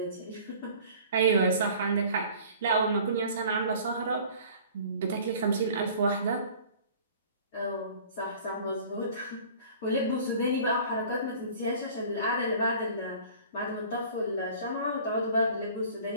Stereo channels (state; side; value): inverted; both; correlation -0.47